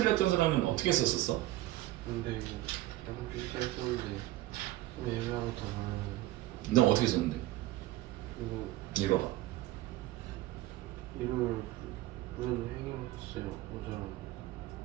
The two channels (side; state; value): left; quieter; 16.7 dB